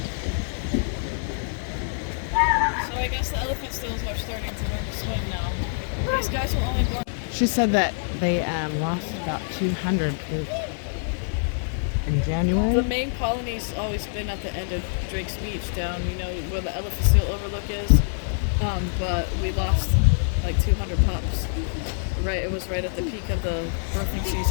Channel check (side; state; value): right; silent; digital silence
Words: She said that they lost about 200 in January. The main colony's always been at the end of Drake's Beach, down, you know, where the elephant seal overlook is. But we lost like 200 pups. Right, it was right at the peak of the birthing